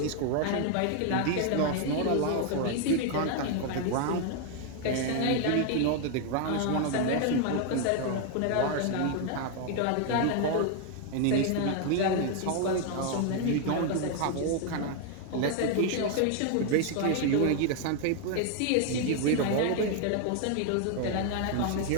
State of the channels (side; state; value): both; different; correlation 0.00